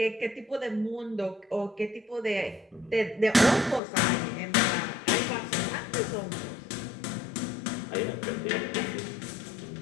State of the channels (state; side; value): drops out; right; at 3.8 s